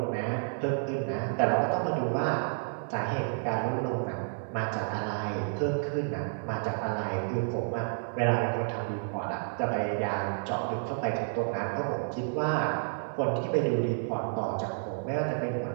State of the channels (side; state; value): left; silent; digital silence